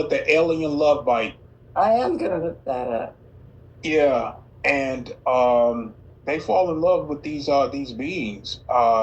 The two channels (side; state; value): both; identical; correlation 1.00